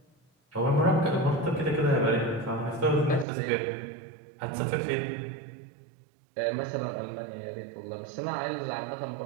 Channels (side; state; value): left; drops out; at 3.2 s